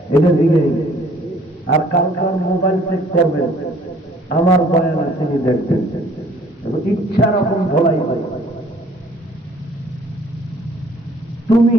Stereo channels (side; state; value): both; normal; correlation 0.57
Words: এটা দিকে। আর কালকার মোবাইল চেক করবেন, আমার বয়ান তিনি দেখবেন, ইচ্ছা রকম ধোলাই হয়। তুমি